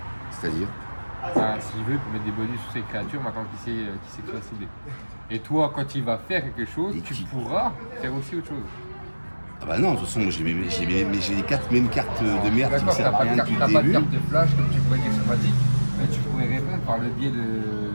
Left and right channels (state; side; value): inverted; both; correlation -1.00